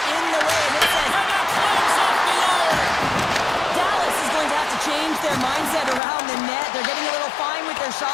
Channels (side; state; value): right; drops out; at 6.0 s